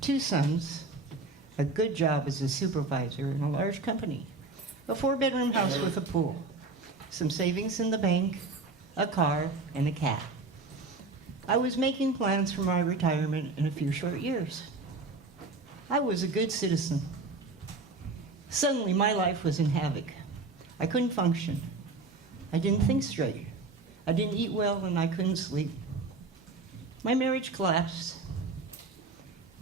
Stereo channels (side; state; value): left; quieter; 3.6 dB